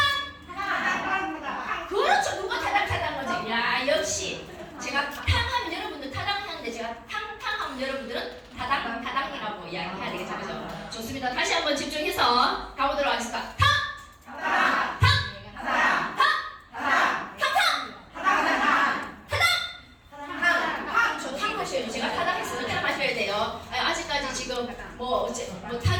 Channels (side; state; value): both; identical; correlation 1.00